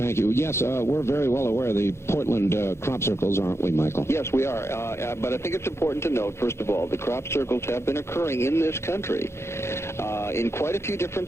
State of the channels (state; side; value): late; right; 0.13 ms